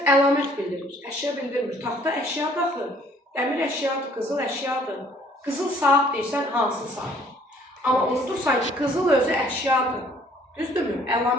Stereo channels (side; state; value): both; normal; correlation 0.59